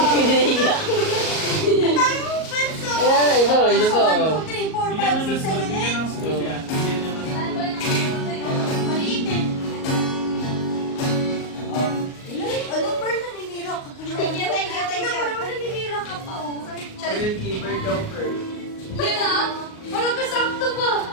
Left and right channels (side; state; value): right; late; 38 ms